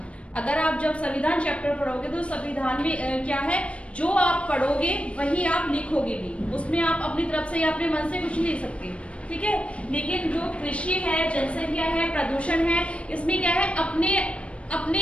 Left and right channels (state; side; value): late; right; 0.061 ms